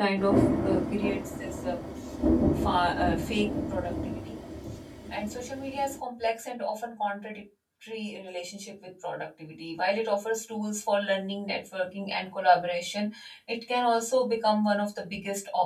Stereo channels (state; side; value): identical; both; correlation 1.00